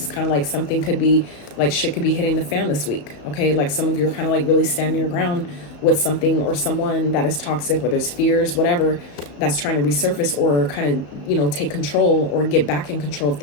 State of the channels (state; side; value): late; right; 34 ms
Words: kind of like something could be like shit could be hitting the fan this week. Okay, like some of you are kind of like really standing your ground with something or someone that is toxic, whether it's fears, whatever, that's trying to resurface or kind of, you know, take control or get back in control of